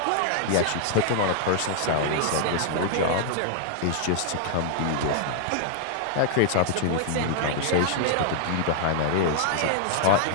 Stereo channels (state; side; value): different; both; correlation -0.01